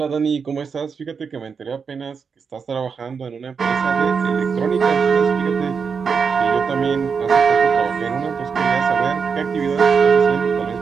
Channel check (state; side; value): quieter; left; 5.9 dB